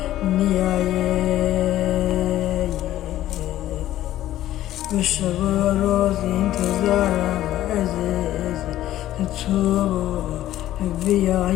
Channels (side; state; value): right; quieter; 13.7 dB